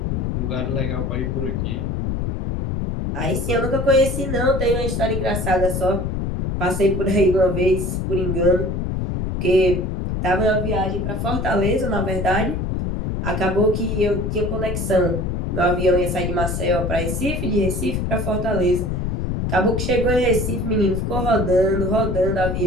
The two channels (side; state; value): left; noise; rumble, 1 dB below the sound